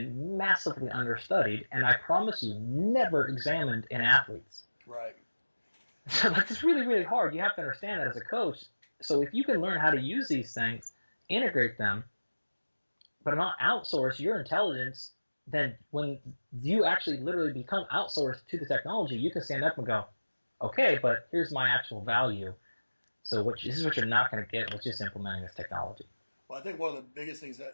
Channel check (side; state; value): both; inverted; correlation -1.00